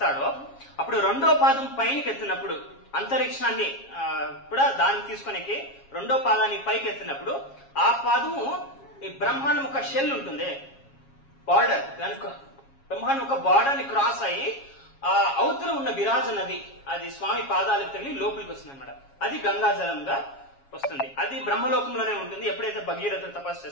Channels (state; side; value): late; right; 7.3 ms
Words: అప్పుడు 2వ పాదం పైకి ఎత్తినప్పుడు అంతరిక్షాన్ని కూడా దాన్ని తీసుకునేకి 2వ పాదాన్ని పైకి ఎత్తినప్పుడు ఆ పాదము ఈ బ్రహ్మాండం ఒక షెల్ ఉంటుంది, బార్డర్, దానికి బ్రహ్మాండం ఒక బార్డర్ ని క్రాస్ అయ్యి ఆ అవతల ఉన్న విరాజ నది అది స్వామి పాదాలకు తగిలి లోపలికి వస్తుంది అనమాట. అది గంగాజలంగా వస్తుంది. అది బ్రహ్మలోకంలోనే ఉంటుంది. ఎప్పుడైతే భగీరథుడు తపస్సు